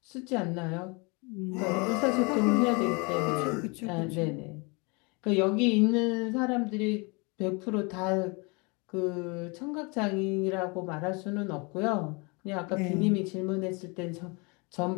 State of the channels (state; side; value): quieter; right; 29.8 dB